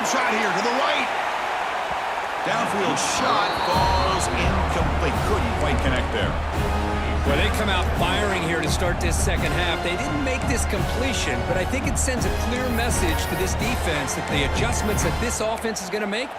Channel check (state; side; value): identical; both; correlation 1.00